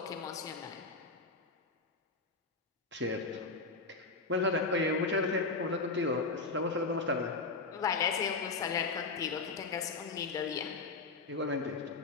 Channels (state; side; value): quieter; right; 3.9 dB